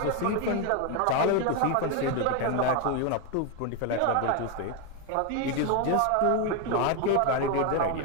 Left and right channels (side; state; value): both; different; correlation 0.01